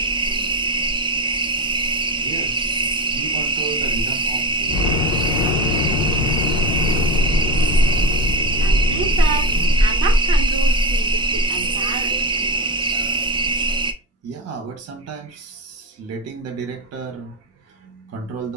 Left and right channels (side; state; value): both; normal; correlation 0.17